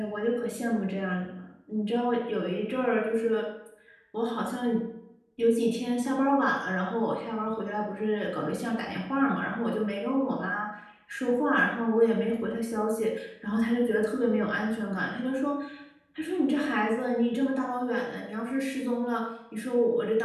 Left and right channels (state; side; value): identical; both; correlation 1.00